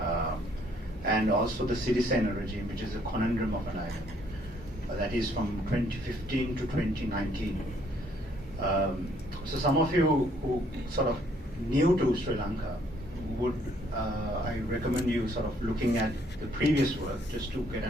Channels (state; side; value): normal; both; correlation 0.65